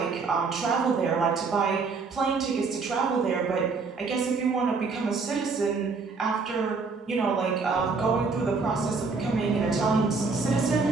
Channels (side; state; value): left; quieter; 4.5 dB